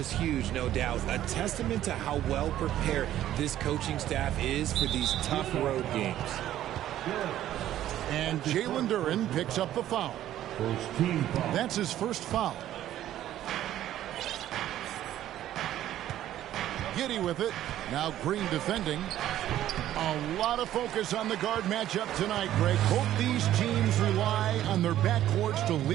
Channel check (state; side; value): quieter; left; 12.6 dB